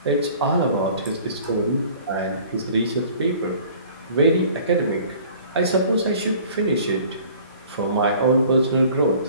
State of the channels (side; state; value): both; inverted; correlation -0.49